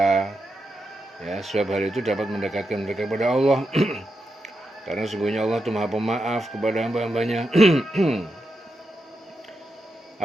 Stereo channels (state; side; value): normal; both; correlation 0.86